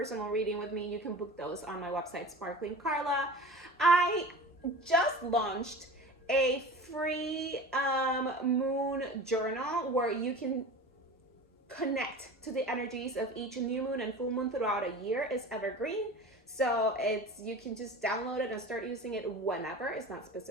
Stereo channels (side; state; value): both; normal; correlation 0.36